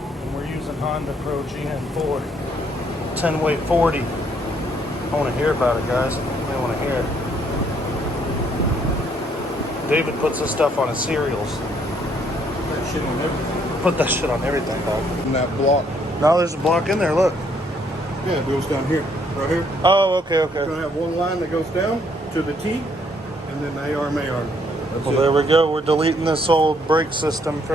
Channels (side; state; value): both; normal; correlation 0.68